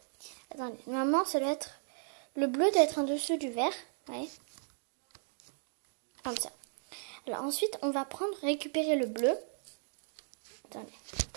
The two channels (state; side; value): silent; left; digital silence